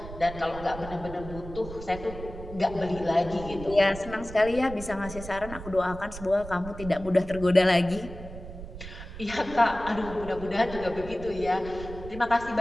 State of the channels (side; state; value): right; noise; rumble, 12 dB below the sound